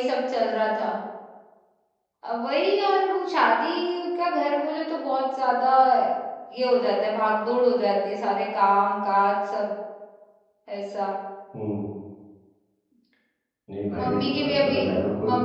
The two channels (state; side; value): identical; both; correlation 1.00